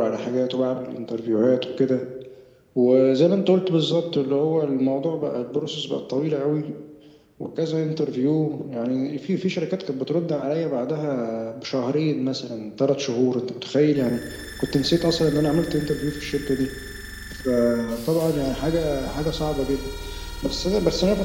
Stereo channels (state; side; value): identical; both; correlation 1.00